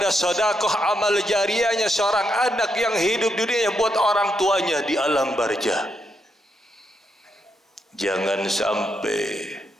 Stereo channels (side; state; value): both; normal; correlation 0.80